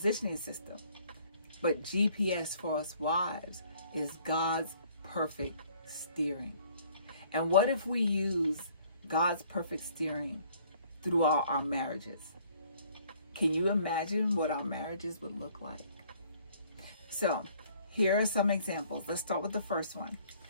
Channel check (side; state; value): both; inverted; correlation -0.59